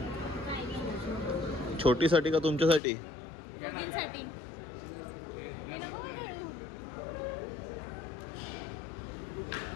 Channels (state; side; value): drops out; right; at 2.8 s